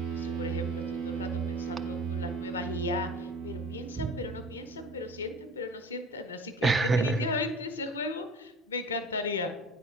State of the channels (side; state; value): both; normal; correlation 0.40